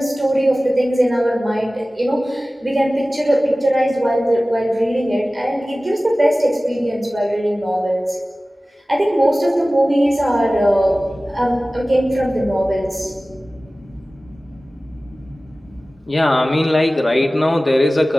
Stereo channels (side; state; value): both; normal; correlation 0.97